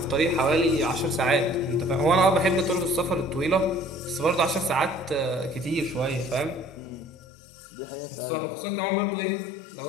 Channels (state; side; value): drops out; right; at 7.1 s